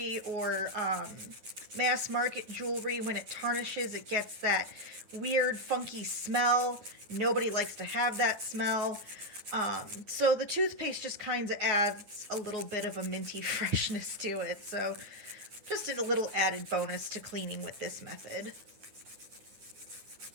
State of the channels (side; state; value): left; late; 9.8 ms